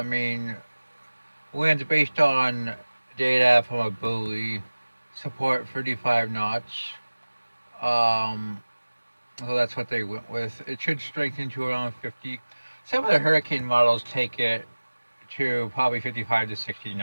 mean, winds based on data from a buoy support 35 knots. Um, So that's what they went with. It should strengthen to around 50. Some of the hurricane models take it to probably 55 to 60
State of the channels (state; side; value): inverted; both; correlation -1.00